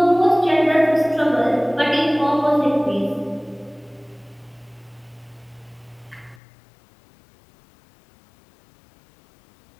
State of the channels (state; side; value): drops out; right; at 6.4 s